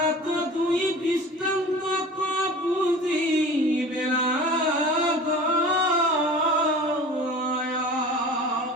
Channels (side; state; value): both; normal; correlation 0.39